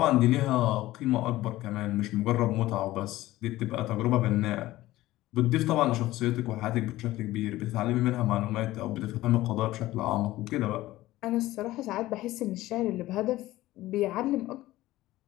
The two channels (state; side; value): quieter; right; 16.6 dB